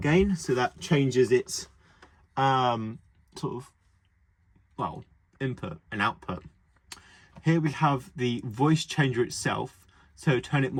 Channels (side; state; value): both; identical; correlation 1.00